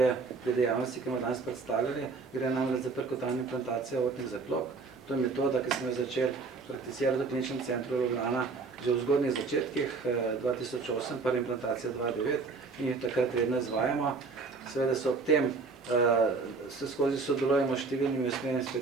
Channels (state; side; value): quieter; left; 4.3 dB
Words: pri dejavnosti, ki smo danes predstavljali. Gre namreč za perkutalno implantacijo aortnih zaklop. To je metoda, ki smo jo začeli prakticirati v kliničnem centru Ljubljana že v zgodnjih začetkih 2008, prva implantacija 2009 in jih takrat redno izvajamo. Seveda so ob tem se skozi sodelujemo s številnimi usmerjenimi